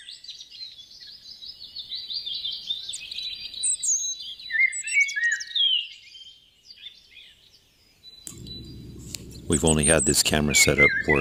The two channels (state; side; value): identical; both; correlation 1.00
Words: We've only had this camera set up for